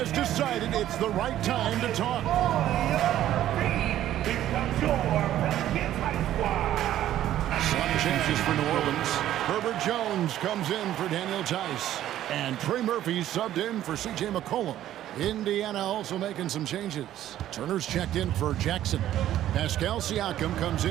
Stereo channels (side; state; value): left; quieter; 12.5 dB